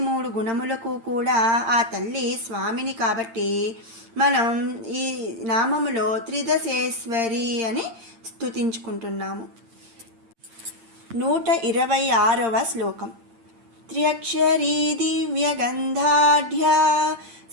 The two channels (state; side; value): late; left; 8.8 ms